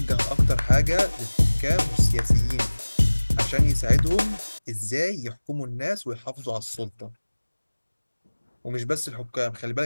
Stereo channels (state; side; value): inverted; both; correlation -1.00